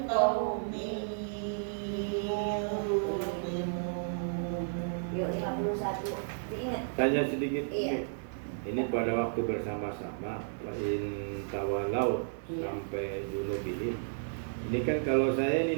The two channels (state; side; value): silent; left; 56 dB below the other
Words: Yuk 51 diingat. Tanya sedikit. Iya. Ini pada waktu bersama-sama in tawalau Iya. sampai junubihim. Ini kan kalau saya